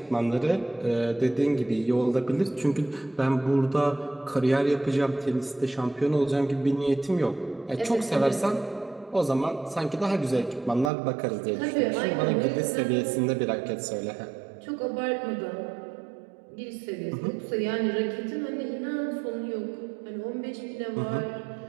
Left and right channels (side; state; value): left; drops out; at 10.9 s